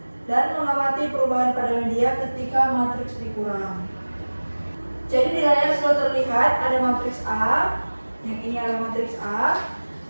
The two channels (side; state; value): both; inverted; correlation -1.00